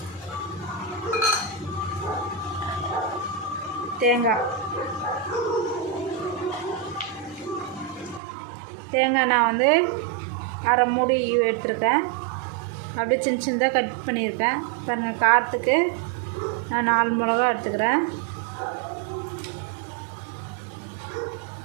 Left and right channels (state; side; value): drops out; left; at 8.2 s